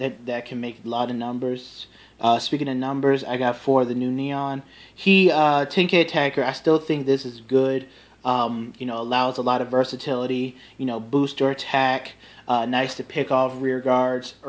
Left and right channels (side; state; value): both; identical; correlation 1.00